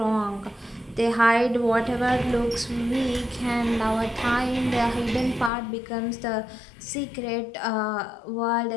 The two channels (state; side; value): drops out; right; at 5.5 s